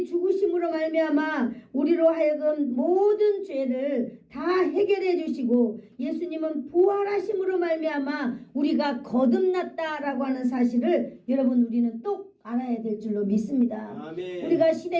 죽으심으로 말미암아 우리로 하여금 모든 죄를 다 해결해 주시고 예수님은 부활하심으로 말미암아 우리가 거듭났다라고 하는 사실을 여러분, 우리는 똑 알아야 될 줄로 믿습니다. 아멘. 우리가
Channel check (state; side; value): identical; both; correlation 1.00